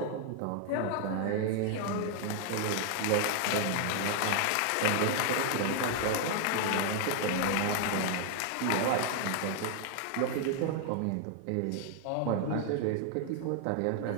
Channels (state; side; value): different; both; correlation 0.00